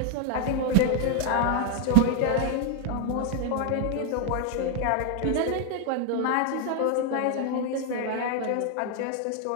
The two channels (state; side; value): different; both; correlation 0.00